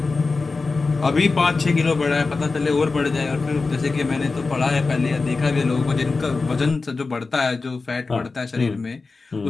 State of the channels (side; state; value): right; quieter; 4.0 dB